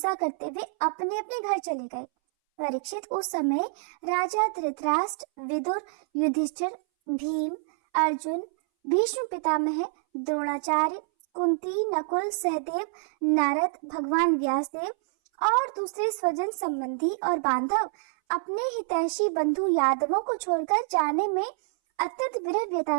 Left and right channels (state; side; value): silent; left; 60 dB below the other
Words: करते हुए अपने अपने घर चले गए। परीक्षित, उस समय राजा धृतराष्ट्र, विदुर, युधिष्ठिर, भीम, अर्जुन, भीष्म पितामह, द्रोणाचार्य, कुंती, नकुल, सहदेव, नारद, भगवान व्यासदेव और दूसरे स्वजन संबंधी और बांधव अपने हितैषी बंधु यादवों को छोड़कर जाने में अत्यंत विरह